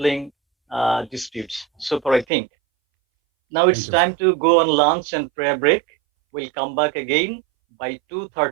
disputes. So far, I think. Now it's Thank you, time to go on lunch and prayer break. We'll come back again by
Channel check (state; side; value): drops out; left; at 2.2 s